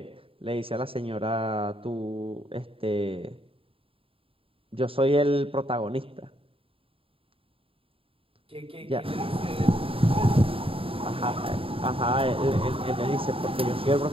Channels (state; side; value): late; left; 0.27 ms